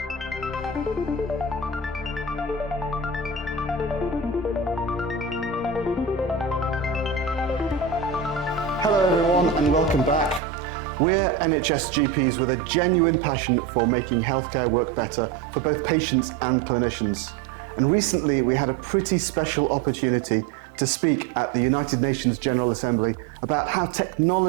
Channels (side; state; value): left; drops out; at 10.4 s